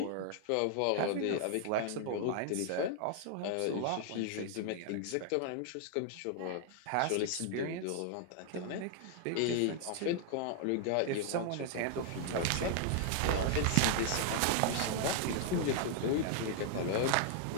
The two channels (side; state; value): both; different; correlation 0.00